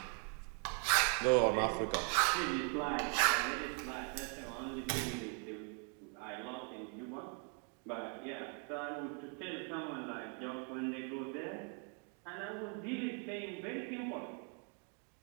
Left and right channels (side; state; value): left; quieter; 40.0 dB